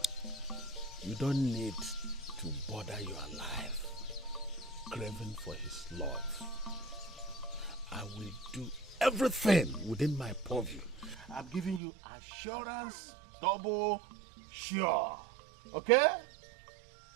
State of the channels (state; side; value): drops out; left; at 11.8 s